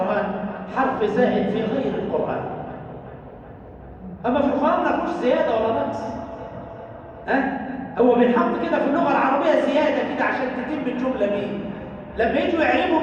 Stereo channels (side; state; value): both; identical; correlation 1.00